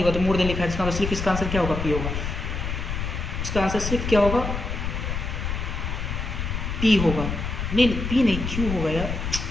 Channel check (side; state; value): left; noise; rumble, 3 dB below the sound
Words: होगा, तो मोर देन लिखा है, इसका मतलब सिर्फ इसका आंसर क्या होगा, P होगा। इसका आंसर सिर्फ क्या होगा, पी होगा, नहीं पी नहीं, क्यू होगा यार,